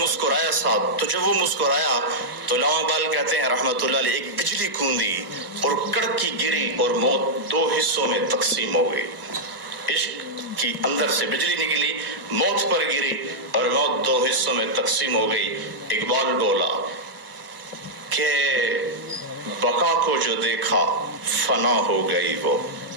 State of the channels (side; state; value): both; normal; correlation -0.06